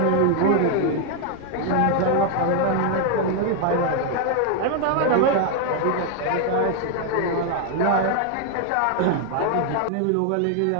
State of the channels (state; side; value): different; both; correlation 0.00